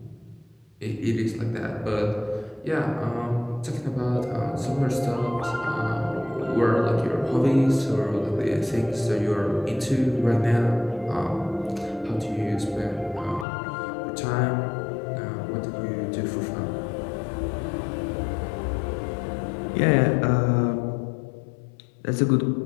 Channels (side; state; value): right; drops out; at 13.5 s